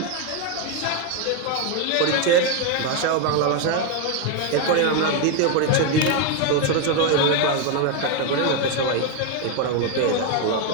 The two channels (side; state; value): both; different; correlation 0.02